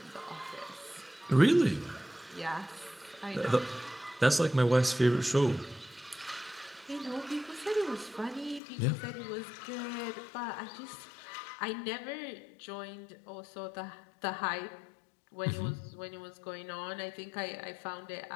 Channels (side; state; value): right; drops out; at 8.6 s